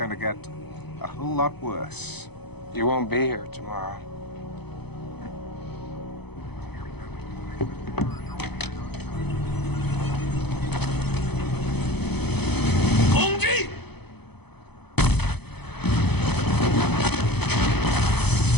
to get a whole lot worse. You won't be here tomorrow.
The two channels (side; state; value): right; late; 0.98 ms